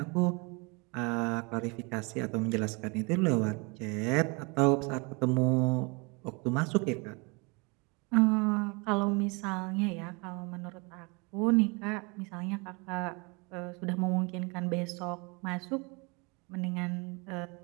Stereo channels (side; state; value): left; quieter; 29.7 dB